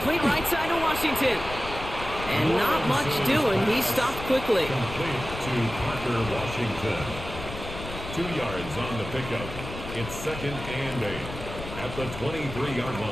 right side to Washington. And not much doing. He stopped quickly. Complete to Parker Washington. 2 yards on the pickup. It's 2nd and 8 at the 23-yard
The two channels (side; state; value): left; noise; rumble, 10 dB below the sound